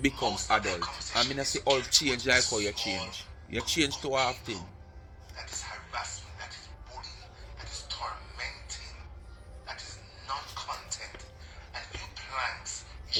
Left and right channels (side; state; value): both; identical; correlation 1.00